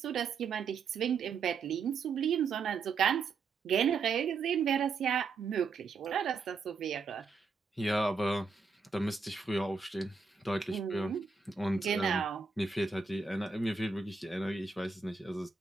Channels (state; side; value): quieter; left; 4.9 dB